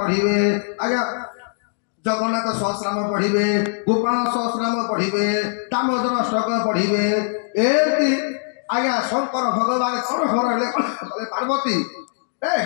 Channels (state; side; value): silent; right; digital silence